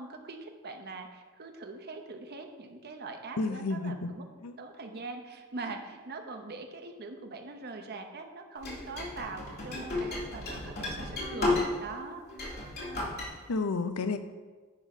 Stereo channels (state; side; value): normal; both; correlation 0.43